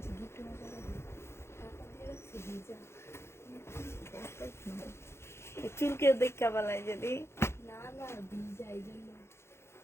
চুলকে দেখা বলায় যদি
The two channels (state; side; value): late; right; 0.12 ms